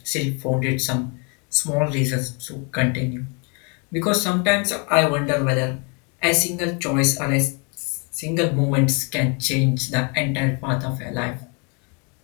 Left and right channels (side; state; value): right; quieter; 34.0 dB